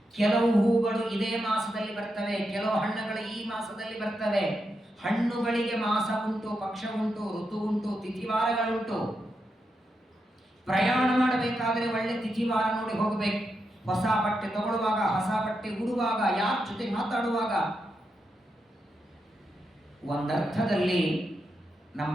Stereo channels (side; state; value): both; normal; correlation 0.85